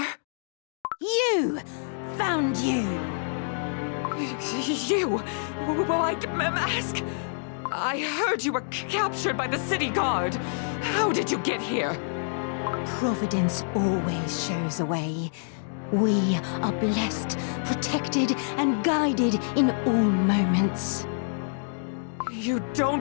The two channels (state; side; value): silent; right; digital silence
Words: You! Found you! You? White Mask? I heard you were captured by the city guard. How did you get here? Providence always shows a way. We are blessed, protected, and guided in all moments. You